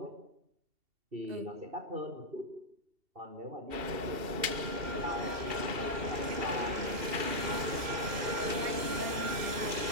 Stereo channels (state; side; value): late; left; 2.7 ms